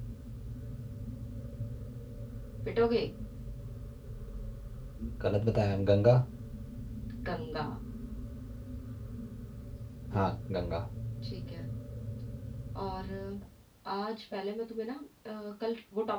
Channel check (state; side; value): identical; both; correlation 1.00